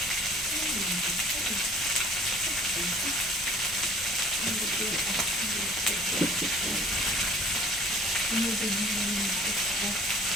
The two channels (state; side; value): normal; both; correlation 0.50